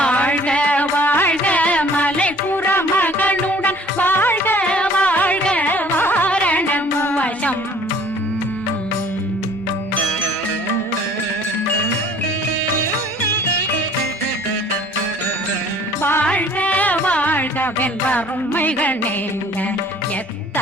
வாழ்க மலை புற மகளுடன் வாழ்க வாழ்க வாரணம் வசம் வாழ்க வாழ்க வென்றருமைகள் நீங்க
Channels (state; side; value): normal; both; correlation 0.53